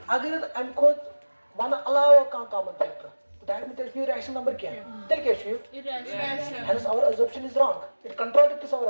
अगर हम को one अलावा का common factor that means there is rational number क्या है तेरे क्या है Irrational. hence our assumption is wrong it contradicts our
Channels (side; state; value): both; inverted; correlation -1.00